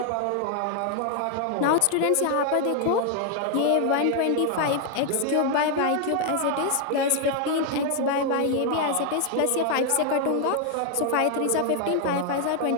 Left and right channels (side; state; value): both; different; correlation 0.00